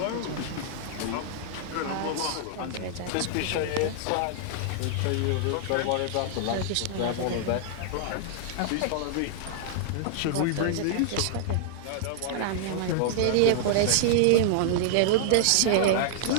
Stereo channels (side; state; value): both; different; correlation -0.01